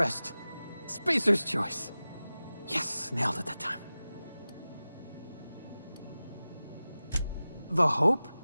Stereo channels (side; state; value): both; inverted; correlation -0.96